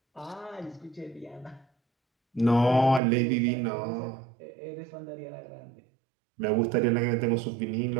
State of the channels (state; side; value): drops out; left; at 3.0 s